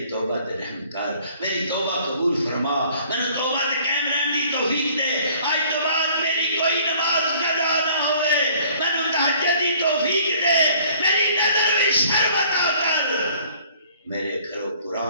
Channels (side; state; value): both; inverted; correlation -0.56